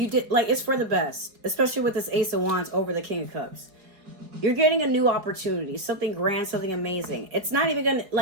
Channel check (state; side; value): late; left; 5.0 ms